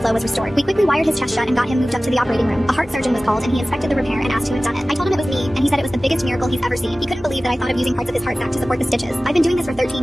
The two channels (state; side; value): normal; both; correlation 0.97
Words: flow was restored. We quickly wired his chest shut and got him moved up to the operating room. A heart surgeon was called and he inspected the repair and asked who had done it. I told him it was me, and he said it was the biggest miracle he's ever seen. He couldn't believe that I thought of using parts of his heart sac to support the stitches. I've been doing this for